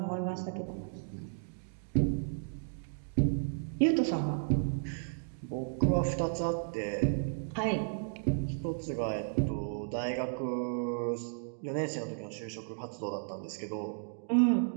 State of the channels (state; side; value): silent; left; digital silence